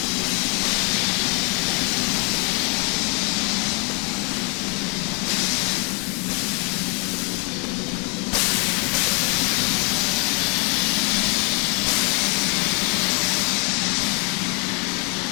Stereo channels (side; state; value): right; quieter; 34.3 dB